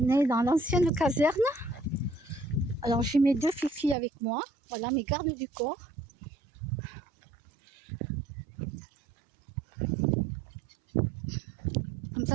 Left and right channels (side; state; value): left; drops out; at 4.0 s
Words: est dans l'ancienne caserne. Alors, j'ai mes 2 filles avec moi. Voilà, mes gardes du corps. Comme